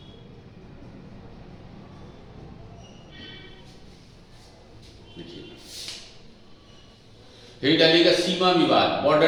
डालिएगा सीमा विवाद,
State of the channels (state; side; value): identical; both; correlation 1.00